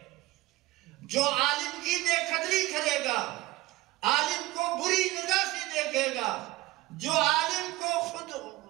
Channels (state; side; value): quieter; left; 18.9 dB